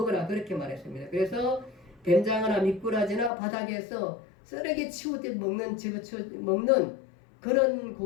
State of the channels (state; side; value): drops out; right; at 3.3 s